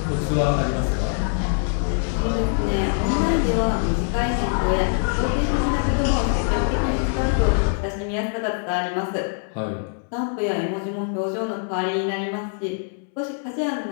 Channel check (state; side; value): silent; right; 63 dB below the other